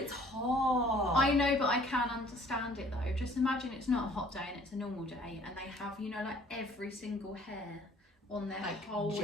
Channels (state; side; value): normal; both; correlation 0.56